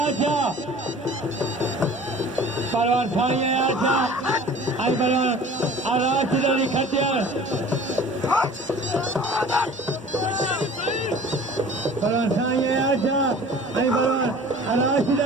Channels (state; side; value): normal; both; correlation 0.45